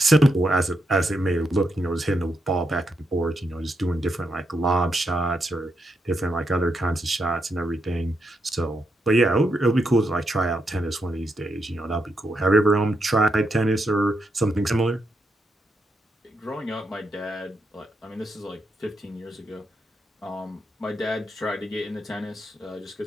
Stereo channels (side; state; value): both; normal; correlation 0.82